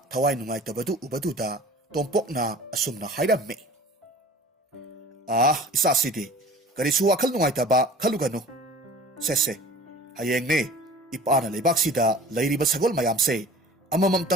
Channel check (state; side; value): normal; both; correlation 0.43